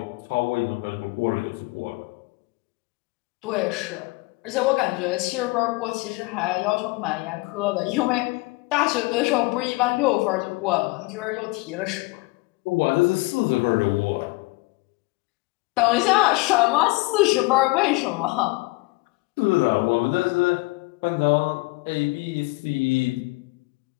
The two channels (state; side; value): quieter; right; 24.0 dB